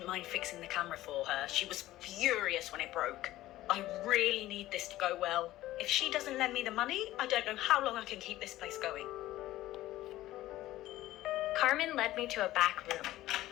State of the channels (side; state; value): right; quieter; 15.6 dB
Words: mind fixing the camera for her. She was furious when it broke. I really need this to go well. If she doesn't lend me the money, I don't know how long I can keep this place going. Carmen led me to a back room,